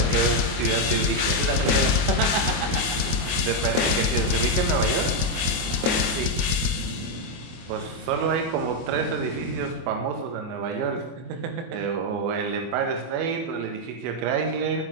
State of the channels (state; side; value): late; left; 24 ms